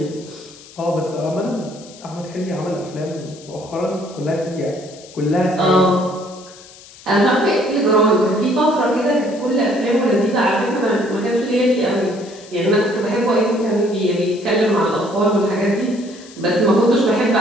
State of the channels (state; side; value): noise; left; hiss, 21 dB below the sound